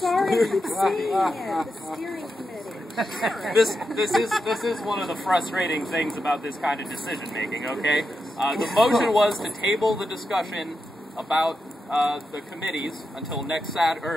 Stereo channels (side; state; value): both; normal; correlation 0.87